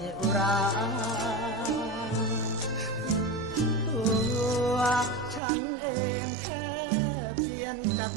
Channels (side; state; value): left; drops out; at 5.4 s